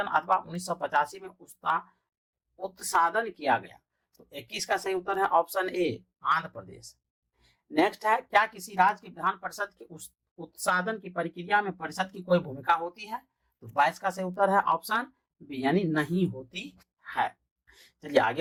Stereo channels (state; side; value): identical; both; correlation 1.00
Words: अथवा 1985 में उसका उत्सादन किया गया, तो 21 का सही उत्तर है ऑप्शन ए, आंध्र प्रदेश। नेक्स्ट है क्या किसी राज्य की विधान परिषद के उत्सादन की प्रक्रिया में परिषद की कोई भूमिका होती है, तो 22 का सही उत्तर है ऑप्शन बी, यानी नहीं होती है। चलिए